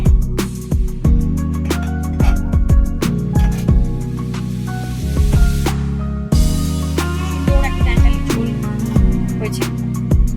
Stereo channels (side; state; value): both; identical; correlation 1.00